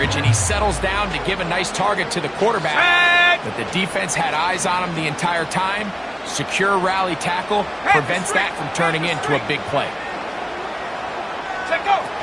and he settles down to give a nice target to the quarterback. But the defense had eyes on him the entire time. Secure rally tackle prevents that from turning into a big play.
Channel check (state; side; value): identical; both; correlation 1.00